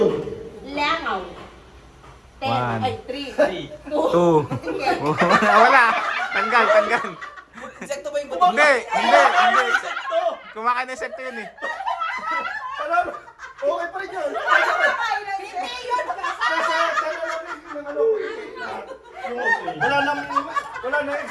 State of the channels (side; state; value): both; identical; correlation 1.00